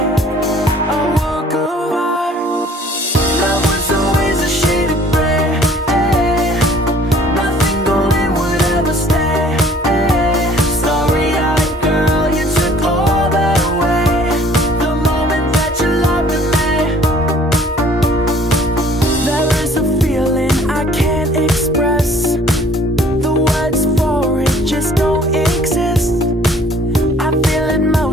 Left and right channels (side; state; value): both; normal; correlation 0.55